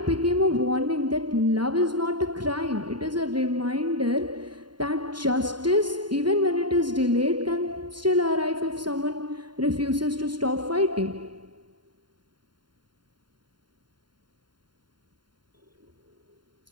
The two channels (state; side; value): late; left; 0.72 ms